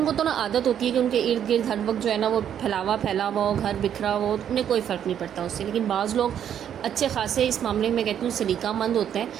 کو تو نا عادت ہوتی ہے کہ ان کے ارد گرد ہر وقت جو ہے نا وہ پھیلا ہوا ہو، گھر بکھرا ہو، انہیں کوئی فرق نہیں پڑتا اس سے، لیکن بعض لوگ اچھے خاصے اس معاملے میں کہتی ہوں سلیقہ مند ہوتے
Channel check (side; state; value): left; quieter; 9.4 dB